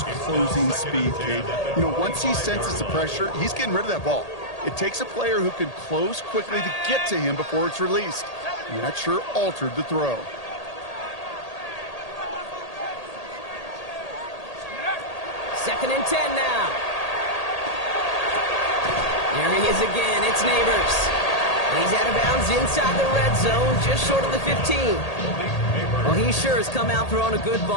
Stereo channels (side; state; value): right; late; 1.8 ms